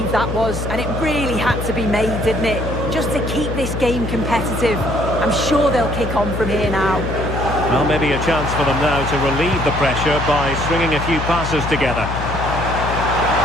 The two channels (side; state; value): left; noise; hum, 5 dB below the sound